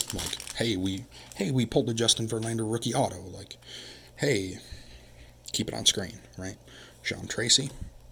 Like, hey, we pulled a Justin Verlander rookie auto. Like, hey, keep it on screen, right? Sean Tracy,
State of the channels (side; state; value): both; identical; correlation 1.00